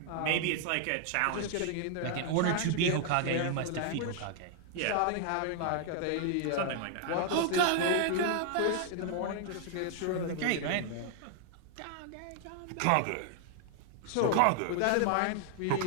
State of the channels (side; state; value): both; different; correlation 0.00